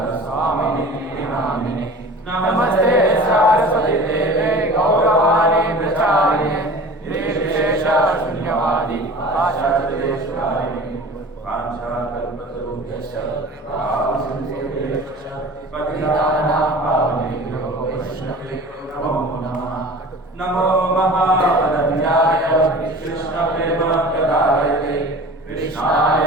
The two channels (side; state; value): both; normal; correlation 0.40